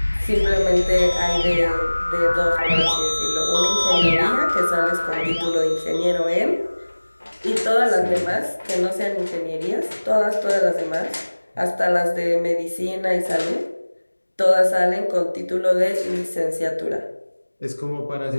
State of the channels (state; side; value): inverted; both; correlation -1.00